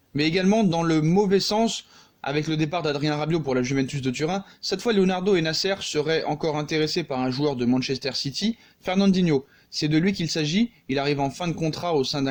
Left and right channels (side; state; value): both; identical; correlation 1.00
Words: mais également dans le mauvais sens avec le départ d'Adrien Rabiot pour la Juventus de Turin. Cette fois, Leonardo et Nasser seraient encore intéressés par un joueur de Manchester City, Fernandinho. C'est de lui qu'il s'agit, il arrive en fin de contrat au sein